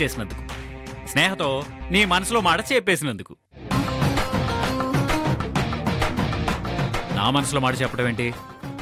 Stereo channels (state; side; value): identical; both; correlation 1.00